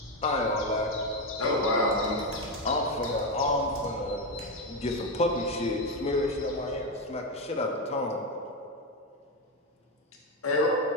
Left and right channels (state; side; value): normal; both; correlation 0.09